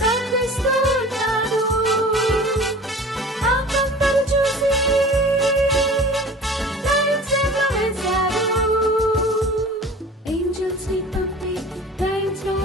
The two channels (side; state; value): both; normal; correlation 0.41